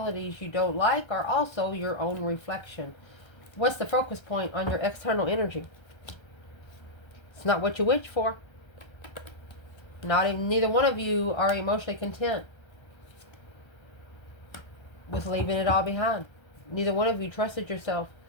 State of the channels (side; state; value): right; late; 1.3 ms